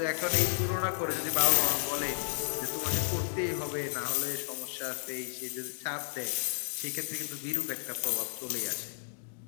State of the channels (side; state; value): right; silent; digital silence